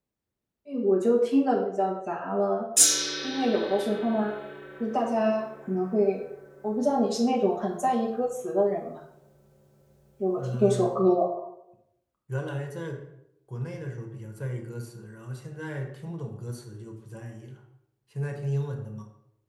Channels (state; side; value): identical; both; correlation 1.00